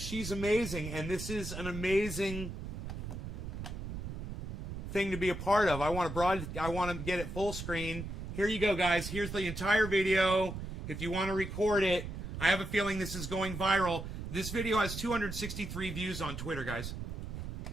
amazing, and this is an amazing thing to be a part of. I want to get it full screen. Here you go, guys. Here's the entire video. If you want to record it, I have a feeling this is going viral. This video has 263 views on Twitter, guys.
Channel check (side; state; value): right; noise; rumble, 7 dB below the sound